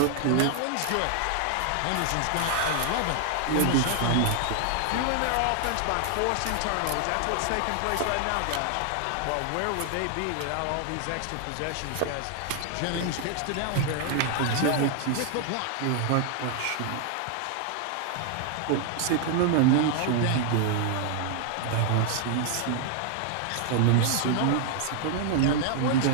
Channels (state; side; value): different; both; correlation 0.00